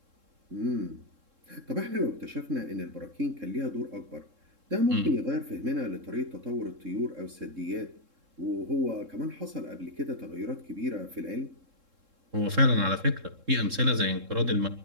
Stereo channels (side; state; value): left; late; 3.7 ms